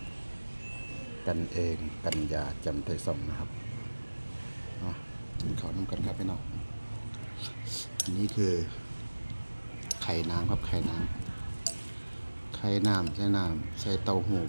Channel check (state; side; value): inverted; both; correlation -1.00